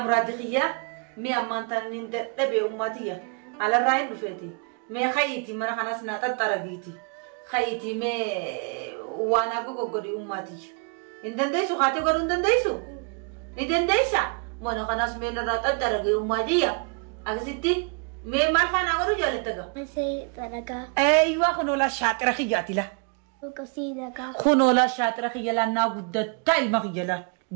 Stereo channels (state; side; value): quieter; left; 36.5 dB